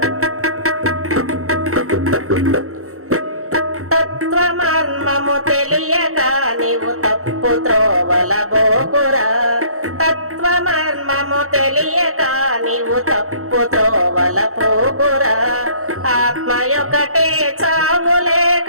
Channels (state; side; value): late; left; 0.64 ms